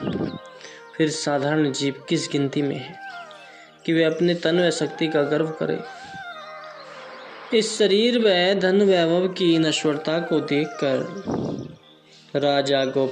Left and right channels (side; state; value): both; identical; correlation 1.00